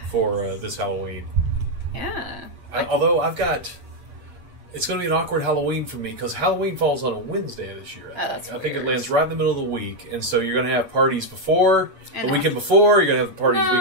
for this Halloween. Yeah. Although I've got... It's going to be an awkward Halloween for me because Halloween falls on a Wednesday this year. I think it lands right in the middle of the week, and so you're going to have parties before, the weekend before, you're going to have parties the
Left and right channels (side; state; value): left; late; 8.4 ms